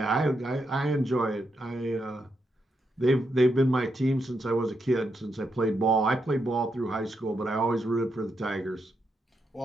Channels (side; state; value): both; normal; correlation 0.82